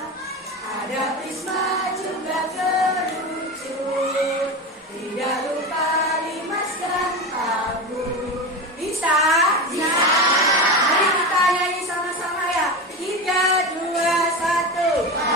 ada prisma juga kerucut, tidak lupa limas dan tabung. Bisa? Bisa. Mari kita nyanyi sama-sama ya. 3, 2, 1.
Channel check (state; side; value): normal; both; correlation 0.22